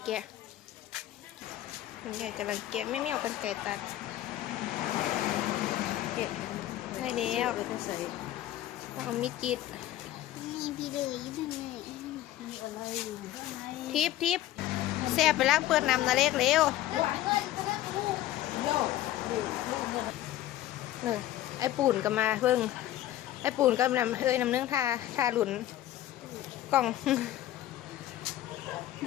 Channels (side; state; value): right; quieter; 13.9 dB